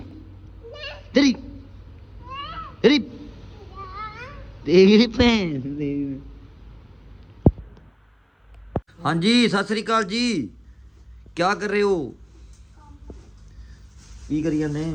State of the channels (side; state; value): both; identical; correlation 1.00